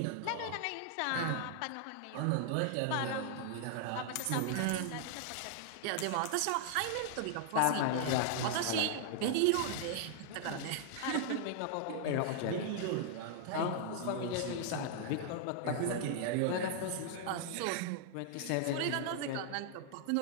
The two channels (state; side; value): different; both; correlation 0.00